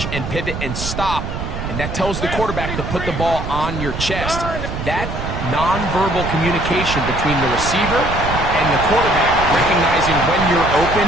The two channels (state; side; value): noise; right; rumble, 5 dB below the sound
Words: and pivot and stop. And that tells the quarterback to put the ball on your chest. That nonverbal communication between the receiver and the quarterback, recognizing when you're open,